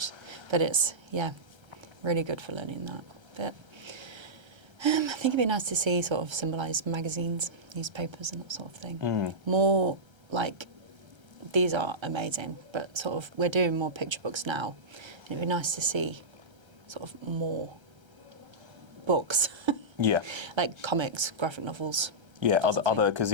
But it's, really good for learning that. But I think it'd be nice to see sort of symbolised magazines, newspapers and that sort of thing. More like, these are amazing, but sort of we're doing more picture books now. And it'd be nice to see sort of more books. Yeah. Like comics, graphic novels. Yeah, other because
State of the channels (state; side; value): late; left; 1.3 ms